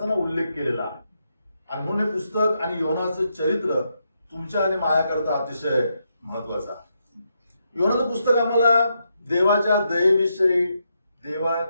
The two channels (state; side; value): inverted; both; correlation -0.81